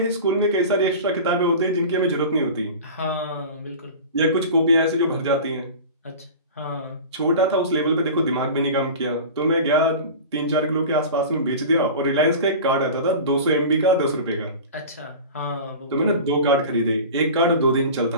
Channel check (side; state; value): both; inverted; correlation -0.34